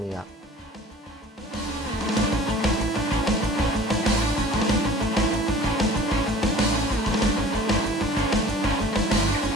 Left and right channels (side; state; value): both; normal; correlation 0.47